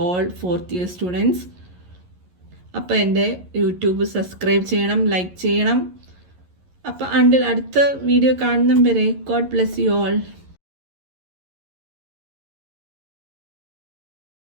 all 4th year students. അപ്പോൾ എൻ്റെ യൂട്യൂബ് സബ്സ്ക്രൈബ് ചെയ്യണം, ലൈക്ക് ചെയ്യണം. അപ്പോൾ അടുത്ത വീഡിയോ കാണുന്നതും വരെ ഗോഡ് ബ്ലെസ് യു ഓൾ.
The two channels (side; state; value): left; late; 11 ms